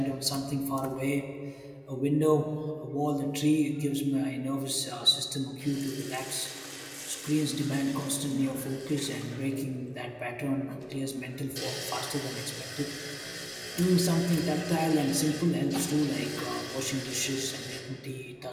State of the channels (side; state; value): both; identical; correlation 1.00